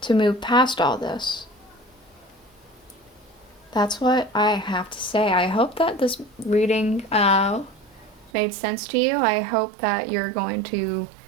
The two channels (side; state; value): left; drops out; at 8.3 s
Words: move past all this. That's what I have to say. I hope that this reading made sense to you. I hope that you